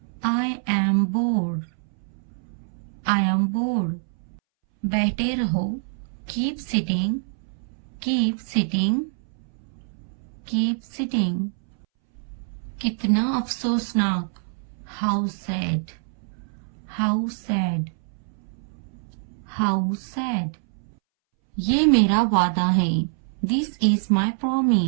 I am bored, I am bored. बैठे रहो, keep sitting, keep sitting, keep sitting. कितना अफसोसनाक, how sad, how sad, how sad. ये मेरा वादा है, this is my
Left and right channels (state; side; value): silent; left; 62 dB below the other